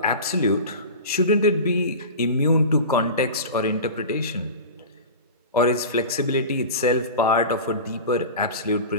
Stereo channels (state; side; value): inverted; both; correlation -0.31